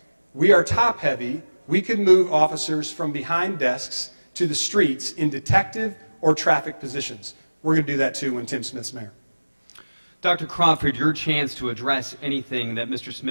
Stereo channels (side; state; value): both; inverted; correlation -1.00